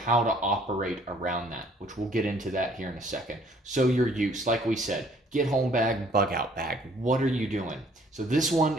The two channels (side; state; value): both; normal; correlation 0.59